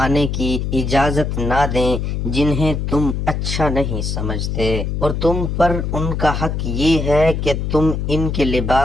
آنے کی اجازت نہ دیں جنہیں تم اچھا نہیں سمجھتے، اور تم پر ان کا حق یہ ہے کہ تم ان کے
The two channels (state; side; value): noise; left; hum, 2 dB below the sound